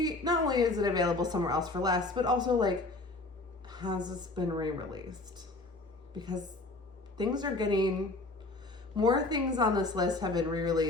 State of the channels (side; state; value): right; quieter; 3.0 dB